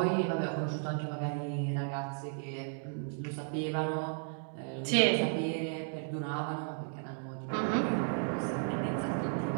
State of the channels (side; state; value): left; silent; 55 dB below the other